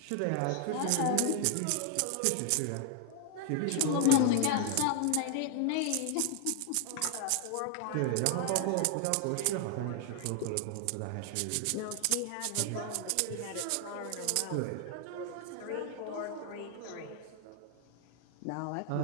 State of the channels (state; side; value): different; both; correlation 0.00